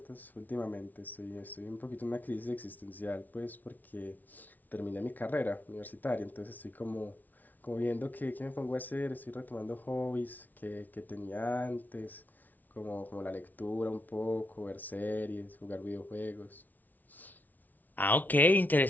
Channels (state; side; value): late; right; 0.081 ms